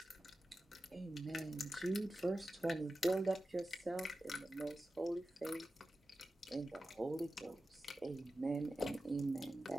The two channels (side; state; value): both; normal; correlation 0.93